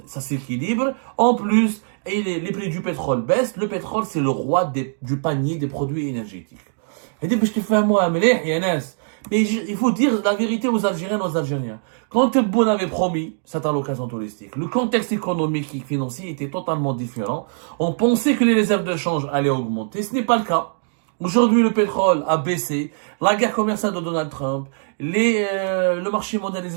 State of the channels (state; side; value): silent; left; digital silence